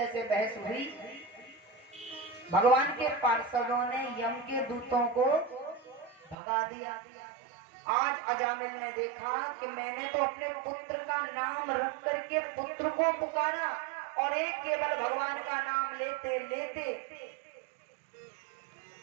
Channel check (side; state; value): left; drops out; at 6.4 s